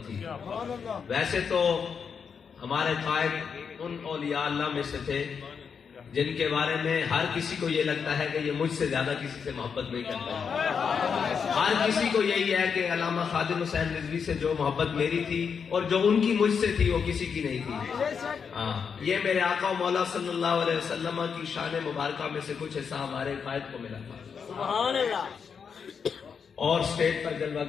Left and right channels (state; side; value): quieter; right; 6.4 dB